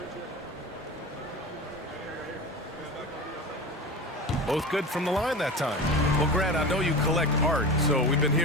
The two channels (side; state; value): both; normal; correlation 0.29